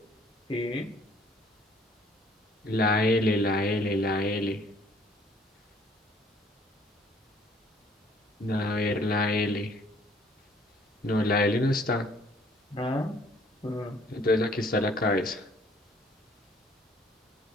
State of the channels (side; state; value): both; normal; correlation 0.59